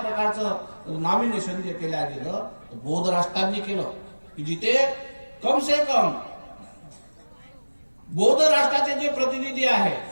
नॉमिनेशन जे केलं गेलं बौद्ध राष्ट्रांनी केलं की जिथे कम से कम बौद्ध राष्ट्राचे जे प्रतिनिधी आहेत,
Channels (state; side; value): inverted; both; correlation -1.00